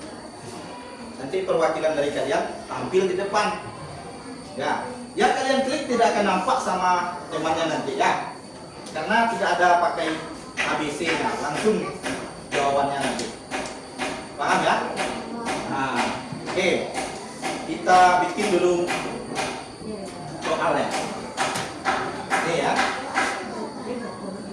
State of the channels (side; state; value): both; identical; correlation 1.00